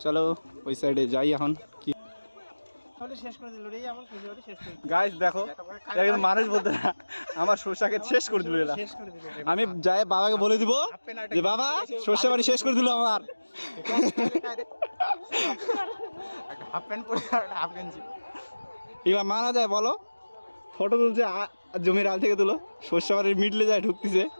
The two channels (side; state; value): both; inverted; correlation -1.00